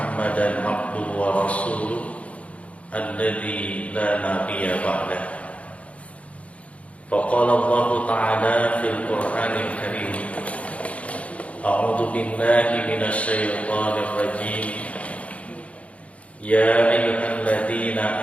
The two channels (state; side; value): late; right; 0.064 ms